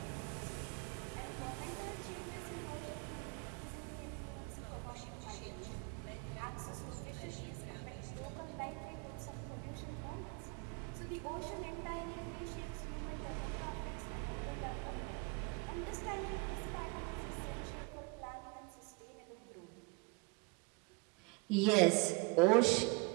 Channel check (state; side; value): quieter; left; 29.4 dB